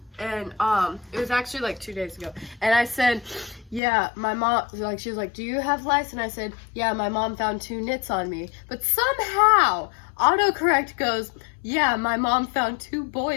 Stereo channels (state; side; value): drops out; right; at 3.8 s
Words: and it was actually like 2 days ago, and I said, yeah, my mom, like, she was like, do you have lice? And I said, yeah, my mom found 2 nits on me, but somehow autocorrect goes, yeah, my mom found 2